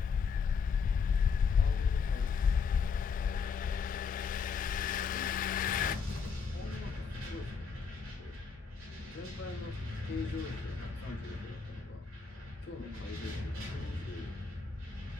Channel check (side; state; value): right; quieter; 5.7 dB